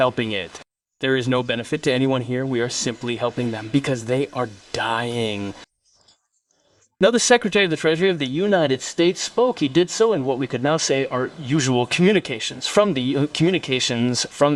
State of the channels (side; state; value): both; identical; correlation 1.00